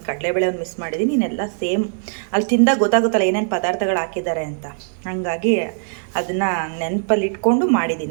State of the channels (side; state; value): left; silent; digital silence